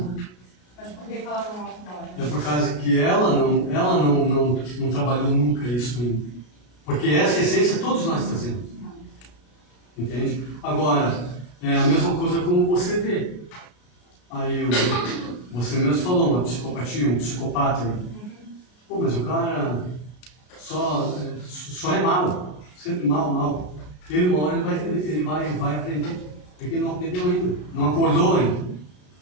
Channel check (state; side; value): late; right; 33 ms